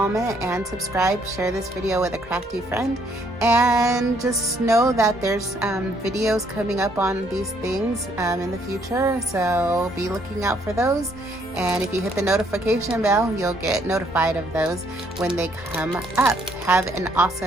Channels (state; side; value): normal; both; correlation 0.68